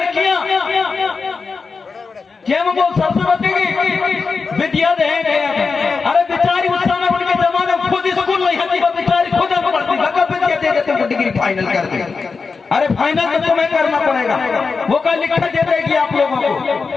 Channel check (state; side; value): quieter; right; 4.8 dB